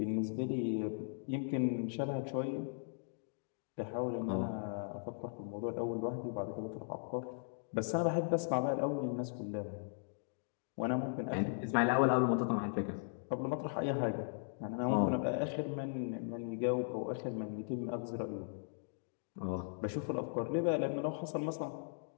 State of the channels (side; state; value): right; silent; digital silence